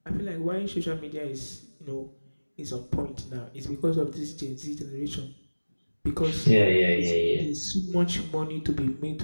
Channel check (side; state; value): both; inverted; correlation -1.00